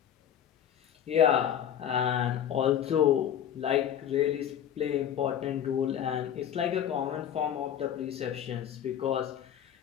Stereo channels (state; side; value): quieter; right; 9.7 dB